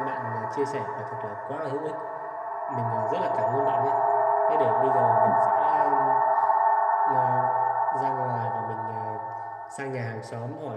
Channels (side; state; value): both; identical; correlation 1.00